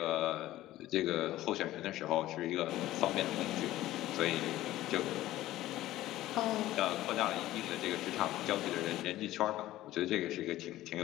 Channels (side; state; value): right; quieter; 15.3 dB